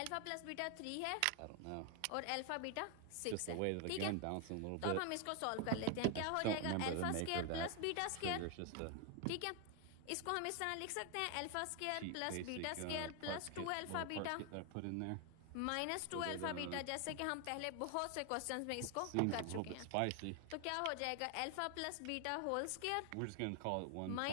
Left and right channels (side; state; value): both; different; correlation 0.01